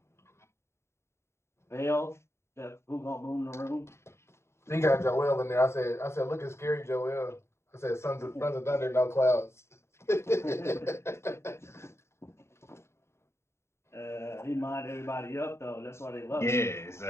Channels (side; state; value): right; late; 0.13 ms